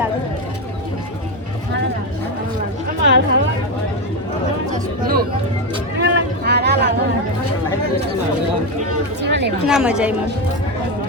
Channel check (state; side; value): normal; both; correlation 0.11